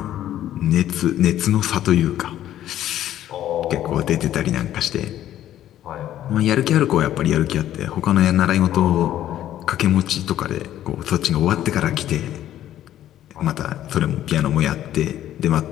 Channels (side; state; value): right; quieter; 12.2 dB